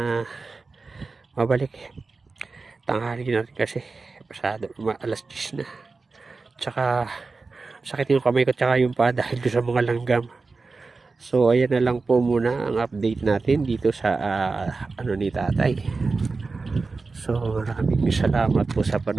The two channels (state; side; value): quieter; left; 4.0 dB